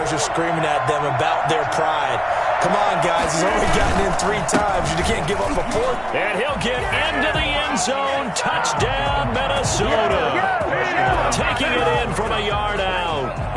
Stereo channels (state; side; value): identical; both; correlation 1.00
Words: are screaming at them about their pride. Come on, guys. He's only gotten in 3 times. You can't give up a 4th. And he'll get into the end zone. Touchdown, Minnesota. Taking it in from a yard out.